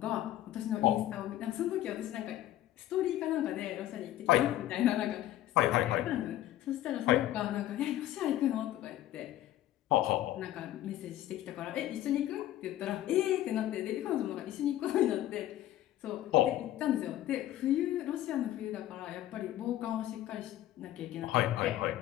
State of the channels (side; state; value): right; quieter; 13.5 dB